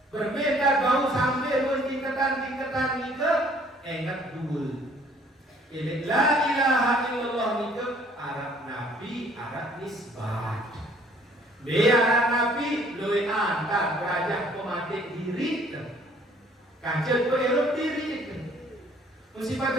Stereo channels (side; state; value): both; normal; correlation 0.59